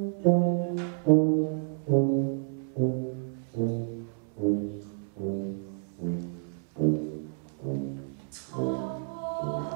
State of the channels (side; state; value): left; silent; 58 dB below the other